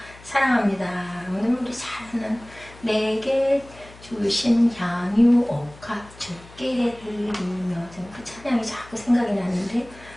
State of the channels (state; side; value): noise; left; hum, 21 dB below the sound